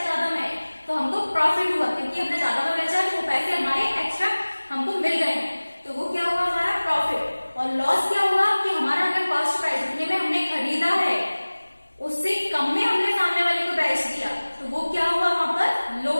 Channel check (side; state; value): both; inverted; correlation -1.00